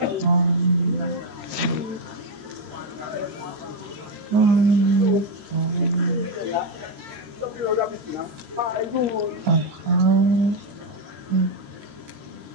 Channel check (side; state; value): left; late; 13 ms